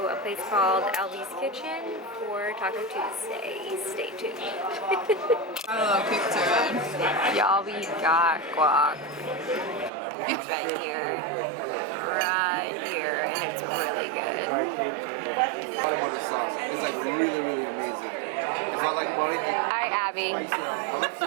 a place called Abbie's Kitchen for Taco Tuesday. Stay tuned. A little kick to it. Y'all, we got guac. It's right here, and it's really good. Butter sauce. It's like really, really amazing. It's not like butter. Hi, Abbie. I like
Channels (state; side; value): drops out; left; at 9.9 s